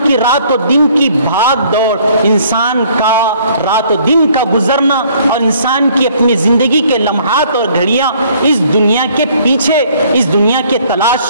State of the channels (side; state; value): both; inverted; correlation -0.60